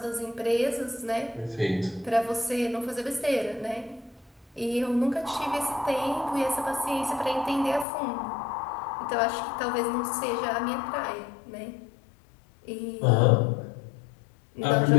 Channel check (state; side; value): drops out; right; at 7.9 s